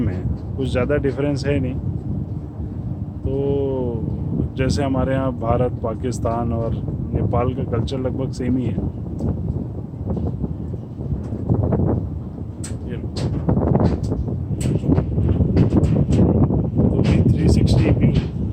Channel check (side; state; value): both; identical; correlation 1.00